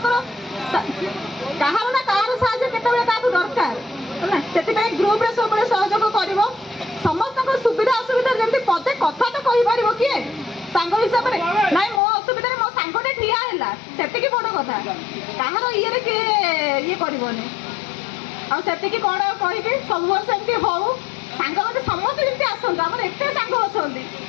କାହାର ନା କାହାର ସାହାଯ୍ୟ କେତେବେଳେ କାହାକୁ ଦରକାର ହେଲା ସେଥିପାଇଁ ଗ୍ରୁପରେ ସବୁବେଳେ ସହଯୋଗ କରିବ ସମସ୍ତଙ୍କ ସୁବିଧା ଅସୁବିଧା ଯେମିତି ପଦେ କଥା ତ କହିପାରିବ କିଏ ସାଙ୍ଗ ହିସାବରେ ନାଇଁ ମୋ ଅସୁବିଧାରେ ମୋ ସାଙ୍ଗଟେ ଠିଆ ହେଲା ସେତିକି ବଡ଼ କଥା କାହାର ଇଏରେ କିଏ ଇଏ କରିବନି ଆଉ ସେତିକି କ'ଣ କହିବି ସବୁବେଳେ ସେମିତି ହଉ ସାଙ୍ଗମାନେ ସମସ୍ତେ ଯେମିତି ଆସନ୍ତୁ ଆମର ଏତେ ସାଙ୍ଗ ଅଛନ୍ତି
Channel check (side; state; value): right; drops out; at 12.0 s